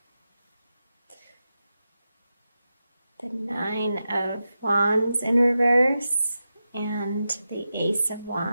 The Nine of Wands in reverse. And the Ace of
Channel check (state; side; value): inverted; both; correlation -0.90